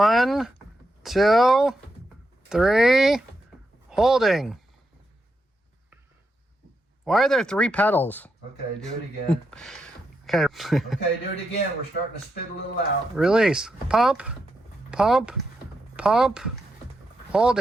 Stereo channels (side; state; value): both; normal; correlation 0.84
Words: 2, 3, holding. Why are there 3 pedals? Okay, do it again. Okay. Okay, do it again. We're starting to spit a little out. Release. Pump, pump, pump,